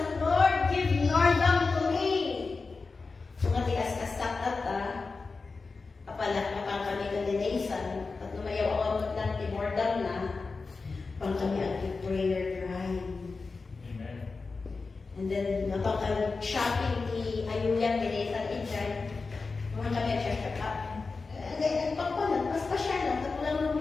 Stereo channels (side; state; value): right; quieter; 4.2 dB